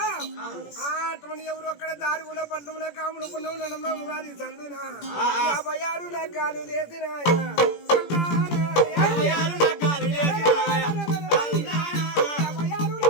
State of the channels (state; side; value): late; right; 17 ms